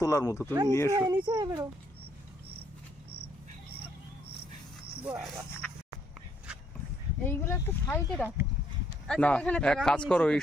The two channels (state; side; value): normal; both; correlation 0.70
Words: তোলার মতো, তুমি নিয়ে এসো। নিচে বেরো বাবা, এইগুলো একটু সাইডে রাখো। না, এক কাজ করো, এই